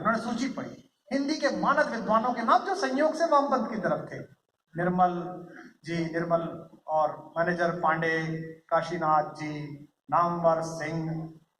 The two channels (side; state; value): both; identical; correlation 1.00